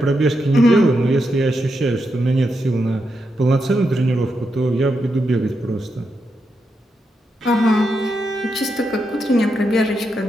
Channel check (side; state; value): both; normal; correlation 0.84